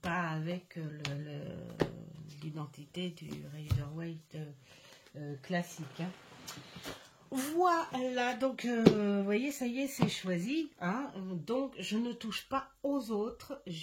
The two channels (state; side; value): identical; both; correlation 1.00